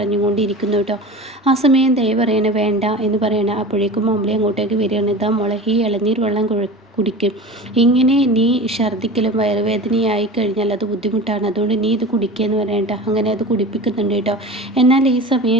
കേട്ടോ. ആ സമയം ദയ പറയണേ വേണ്ട എന്ന് പറയണേ. അപ്പോഴേക്കും മമ്മളി അങ്ങോട്ടേക്ക് വരികയാണ്. ഇതാ മോളെ, ഈ ഇളനീർ വെള്ളം കുടിക്കും. ഇങ്ങനെ നീ ഛർദ്ദിക്കലും വയറുവേദനയായി കഴിഞ്ഞാൽ അത് ബുദ്ധിമുട്ടാണ്, അതുകൊണ്ട് നീ ഇത് കുടിക്കുകയെന്ന് പറയണ്ട. അങ്ങനെ അത് കുടിപ്പിക്കുന്നുണ്ട് കേട്ടോ. എന്നാൽ ഈ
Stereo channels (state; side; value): normal; both; correlation 0.34